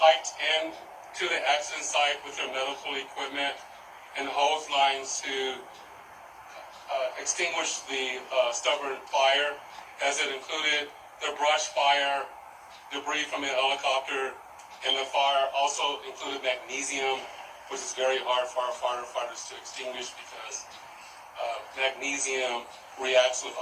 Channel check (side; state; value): both; identical; correlation 1.00